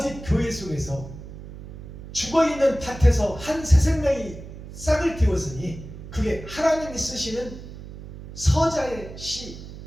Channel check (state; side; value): noise; right; hum, 13 dB below the sound